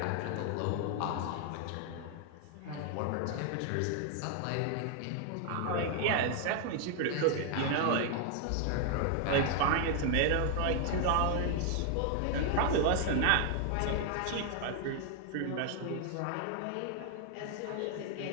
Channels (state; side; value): different; both; correlation 0.00